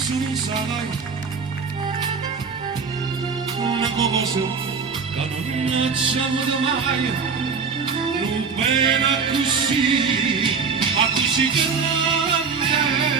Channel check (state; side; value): quieter; left; 5.4 dB